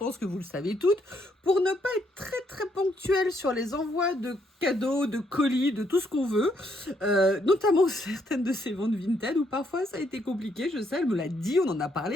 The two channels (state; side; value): normal; both; correlation 0.73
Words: que vous le savez toutes, pour ne pas être très ponctuelle sur les envois de cadeaux, de colis, de tout ce qu'on veut, notamment certaines de ses ventes Vinted, où parfois ça a été compliqué, je sais, elle me l'a dit, on en a parlé,